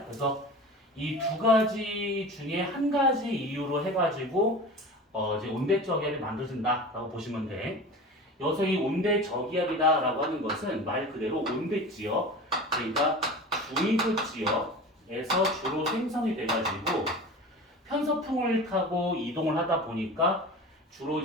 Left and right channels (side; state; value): both; normal; correlation 0.34